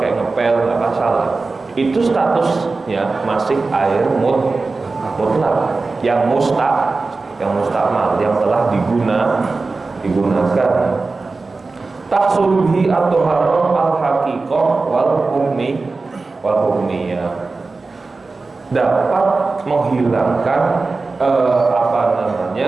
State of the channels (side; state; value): left; quieter; 3.8 dB